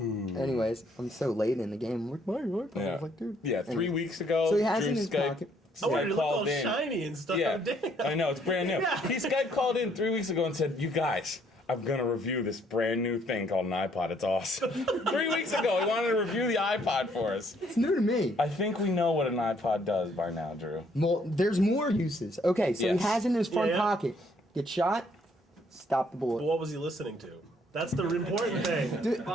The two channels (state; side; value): normal; both; correlation 0.66